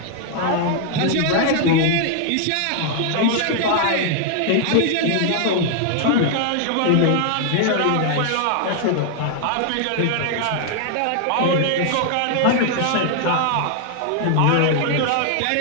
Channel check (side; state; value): both; different; correlation 0.00